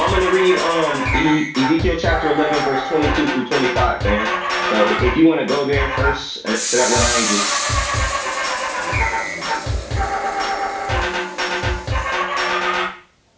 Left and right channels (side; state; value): both; identical; correlation 1.00